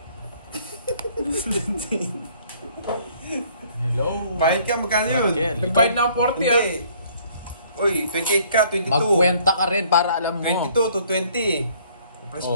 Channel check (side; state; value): both; inverted; correlation -0.60